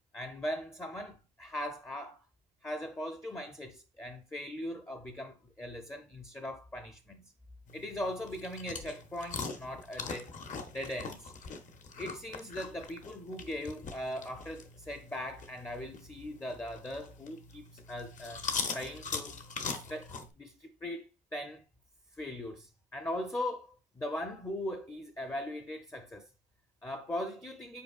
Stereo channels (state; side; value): normal; both; correlation 0.58